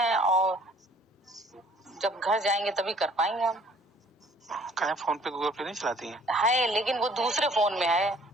और जब घर जाएंगे तभी कर पाएंगे हम। कहे फोन पे गूगल पे नहीं चलाती हैं? है, लेकिन वो दूसरे फोन में है।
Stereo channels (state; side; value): normal; both; correlation 0.56